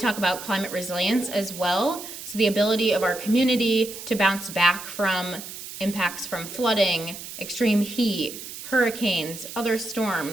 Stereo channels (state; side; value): noise; right; hiss, 11 dB below the sound